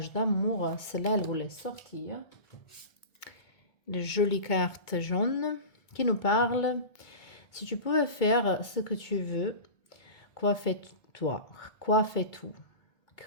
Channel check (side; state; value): right; late; 2.2 ms